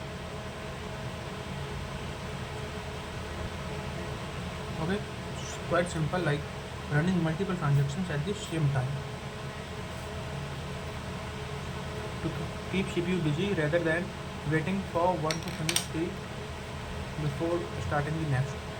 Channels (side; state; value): both; identical; correlation 1.00